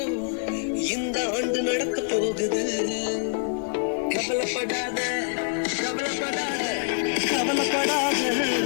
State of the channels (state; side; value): silent; right; digital silence